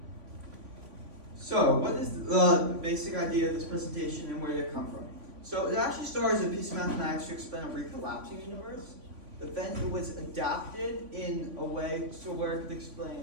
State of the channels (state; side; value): late; left; 3.5 ms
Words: So, what is the basic idea of this presentation and where did it come from? So, it actually started as a piece of mathematics to explain a recollapsing universe, but then it was adapted in a way so where it could